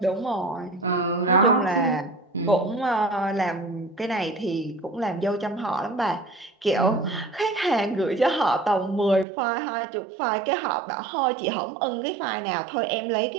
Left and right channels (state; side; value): drops out; left; at 9.2 s